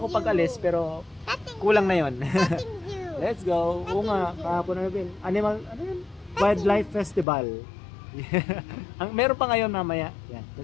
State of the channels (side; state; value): right; drops out; at 7.2 s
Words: pag alis pero kulang na yon. Let's go. Oo nga, kahapon na rin. Ano yun? Wildlife Festival. Meron pa ngayon mamaya. Yan.